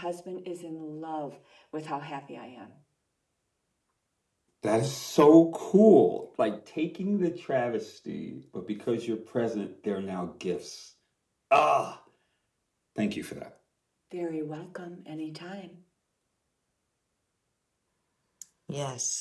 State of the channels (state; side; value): identical; both; correlation 1.00